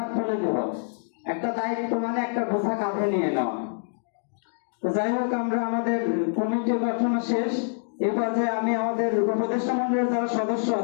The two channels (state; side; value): silent; right; digital silence